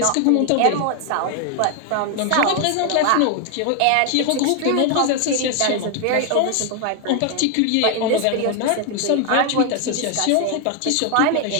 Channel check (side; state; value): both; different; correlation 0.01